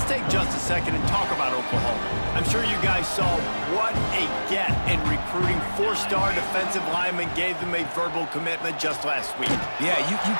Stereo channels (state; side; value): inverted; both; correlation -1.00